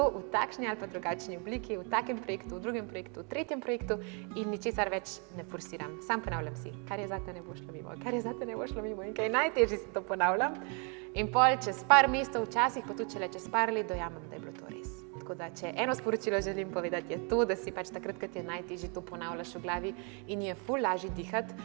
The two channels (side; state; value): left; quieter; 36.3 dB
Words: v takšni ali pa drugačni obliki, v takem projektu, v drugem projektu, v tretjem projektu in ničesar več ne forsiram. Sam ponavljam si, kar je zate, ne bo šlo mimo, kar je zate, ne bo šlo mimo in kaj najtežje si to ponavljam. In pol čez par mesecev, včasih pa tudi čez par let dojamem, da je bilo to res. Tako da, če eno sporočilo želim povedati, je to, da si pač takrat, kad je najtežje, to ponavljaš v glavi in je ful lažje dihati,